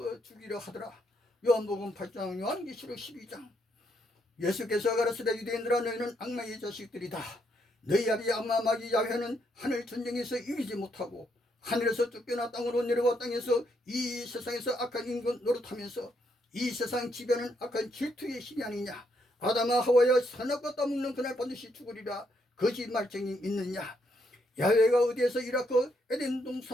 죽이려 하더라. 요한복음 8장 요한계시록 12장 예수께서 가라사대 유대인들아 너희는 악마의 자식들이다. 너희 아비 악마 마귀 야훼는 하늘 전쟁에서 이기지 못하고 하늘에서 쫓겨나 땅으로 내려와 땅에서 이 세상에서 악한 인간 노릇하면서 이 세상 지배는 악한 질투의 신이 아니냐. 아담아 하와야 선악과 따먹는 그날 반드시 죽으리라. 거짓말쟁이 있느냐. 야훼가 어디에서 이라크 에덴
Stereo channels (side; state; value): both; normal; correlation 0.76